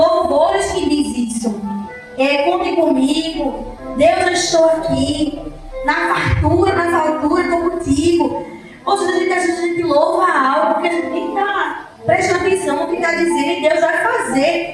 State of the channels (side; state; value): both; identical; correlation 1.00